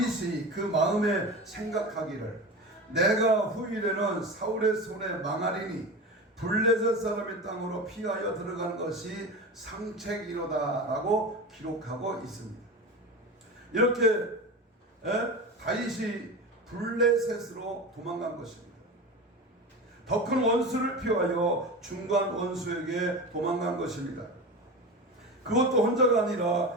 그 마음에 생각하기를 내가 후일에는 사울의 손에 망하리니 블레셋 사람의 땅으로 피하여 들어가는 것이 상책이로다 라고 기록하고 있습니다. 이렇게 다윗이 블레셋으로 도망간 것입니다. 더 큰 원수를 피하여 중간 원수에게 도망간 것입니다. 그것도 혼자가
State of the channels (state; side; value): normal; both; correlation 0.27